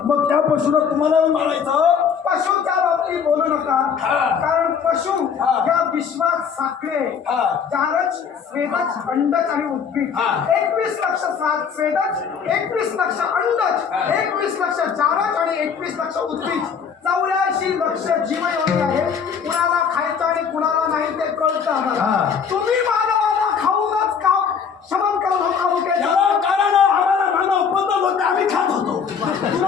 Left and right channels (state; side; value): quieter; right; 6.7 dB